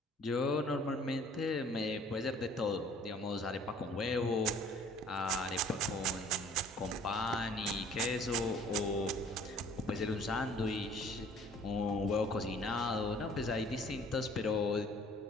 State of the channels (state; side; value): normal; both; correlation 0.54